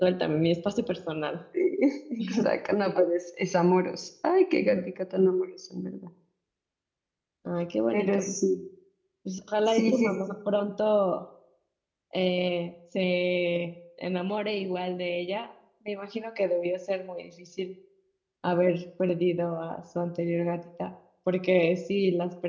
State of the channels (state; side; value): identical; both; correlation 1.00